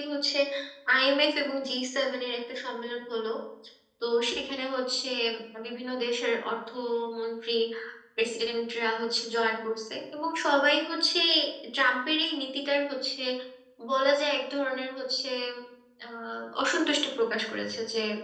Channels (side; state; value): both; identical; correlation 1.00